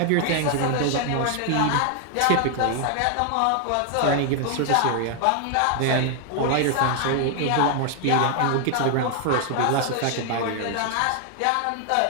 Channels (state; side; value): different; both; correlation 0.00